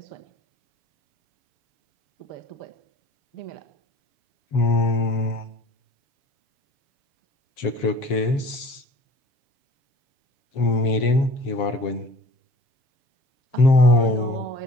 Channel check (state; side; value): late; right; 7.5 ms